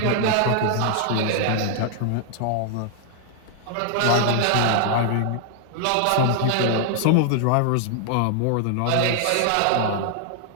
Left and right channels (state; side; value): different; both; correlation 0.00